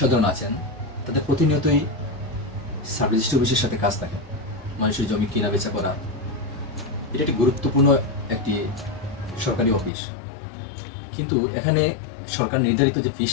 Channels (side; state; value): right; drops out; at 9.9 s